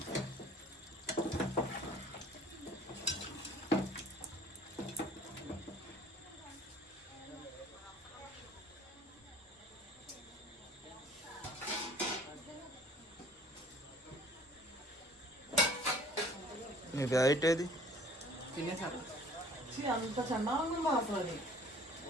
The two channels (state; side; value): normal; both; correlation 0.52